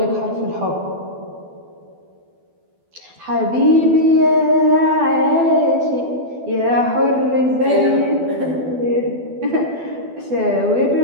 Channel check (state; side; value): late; left; 12 ms